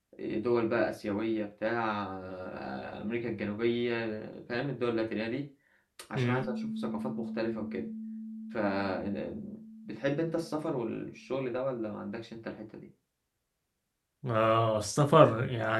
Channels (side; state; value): both; identical; correlation 1.00